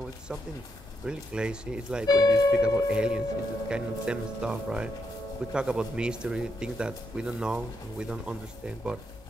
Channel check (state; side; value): normal; both; correlation 0.80